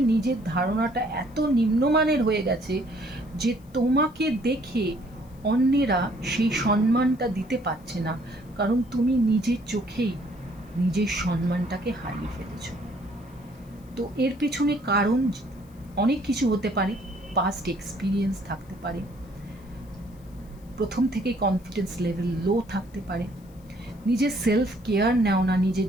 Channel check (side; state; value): left; noise; hiss, 30 dB below the sound